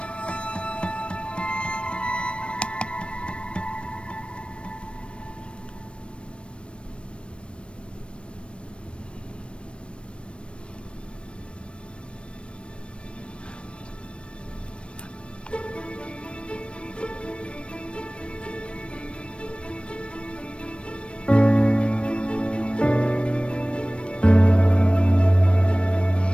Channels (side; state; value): right; late; 0.058 ms